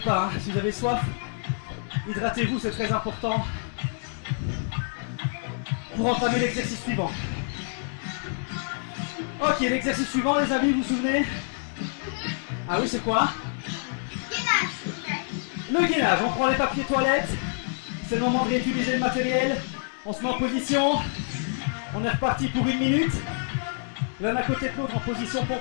Hein. Si vous avez soif, hydratez-vous, c'est très important. Pour entamer l'exercice suivant. Ok, l'exercice suivant, les amis, vous vous souvenez? Ah oui, c'est quoi? Le gainage. On prend les papiers toilettes. C'est le moment de réutiliser le matériel. On se met en position. On est reparti pour 1 minute. L'un à côté de l'autre en position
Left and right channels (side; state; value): right; silent; digital silence